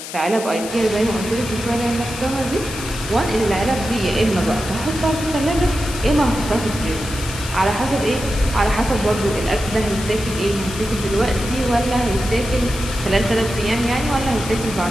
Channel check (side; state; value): left; noise; hiss, 10 dB below the sound